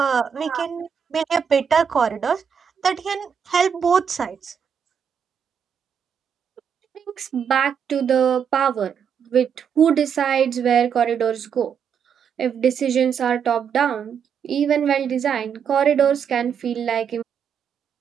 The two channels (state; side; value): quieter; left; 7.4 dB